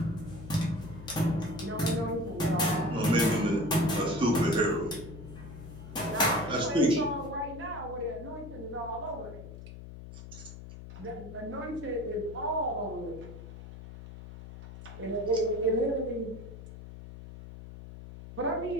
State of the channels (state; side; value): noise; left; hum, 13 dB below the sound